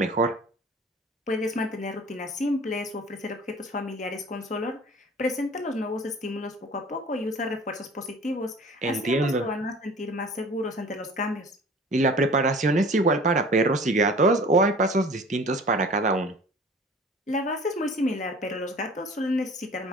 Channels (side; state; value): both; normal; correlation 0.44